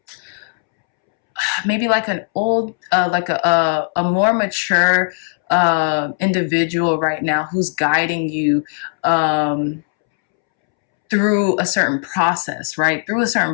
maybe like an old, like a more mature individual right now who's guiding you through a certain process, right?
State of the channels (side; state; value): right; silent; 67 dB below the other